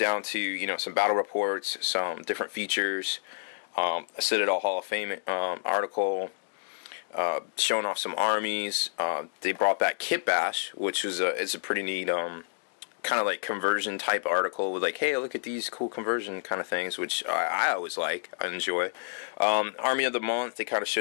to some battle reports, some different features, a Citadel Hall of Fame article. Showing off some armies. They brought back Kit Bash, which is a pretty neat kind of like conversion type article with like, hey, look at these cool conversion kind of things, which I always like, I enjoy. Army of the Month, they kind of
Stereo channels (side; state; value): right; silent; digital silence